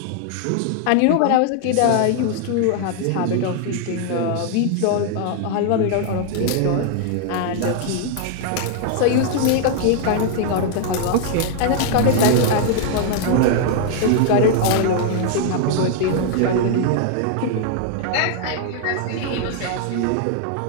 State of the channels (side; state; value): both; different; correlation 0.00